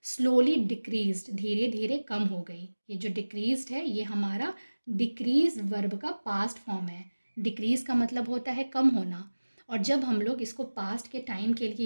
स्लोली डिक्रीज्ड, धीरे धीरे कम हो गई। ये जो डिक्रीज्ड है ये हमारा डिक्रीज वर्ब का पास्ट फॉर्म है। डिक्रीज का मतलब होता है कम होना, और जब हम लोग इसको पास्ट के टाइम के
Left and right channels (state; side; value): inverted; both; correlation -1.00